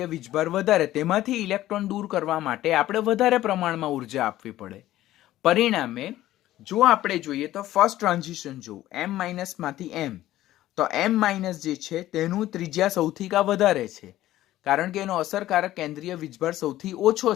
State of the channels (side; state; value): right; quieter; 14.5 dB